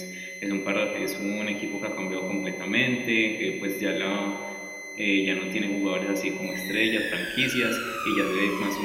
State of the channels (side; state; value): both; identical; correlation 1.00